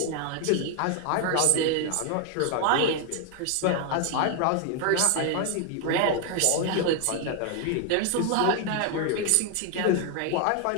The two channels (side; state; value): both; different; correlation 0.01